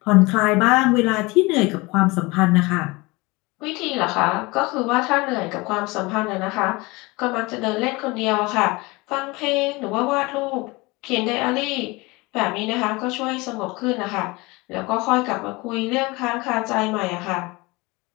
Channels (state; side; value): quieter; right; 24.0 dB